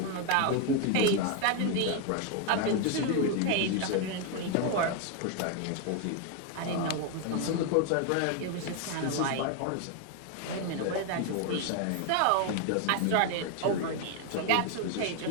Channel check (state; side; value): different; both; correlation 0.01